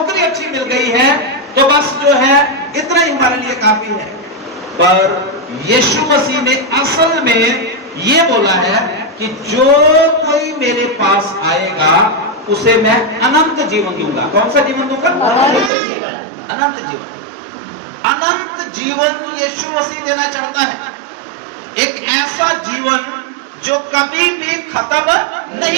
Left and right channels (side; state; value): left; drops out; at 15.7 s